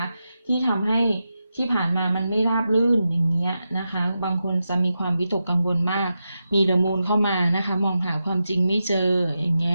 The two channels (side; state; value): both; inverted; correlation -0.89